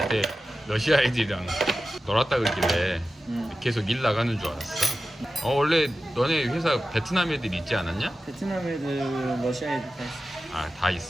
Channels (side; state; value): both; normal; correlation 0.93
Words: 러시아 애들이랑 놀았다 그러길래 계속 일 나가는 줄 알았어. 원래 너네 회사 베트남 애들 있지 않았냐? 베트남 애들, 러시아 애들 다 있어. 아, 다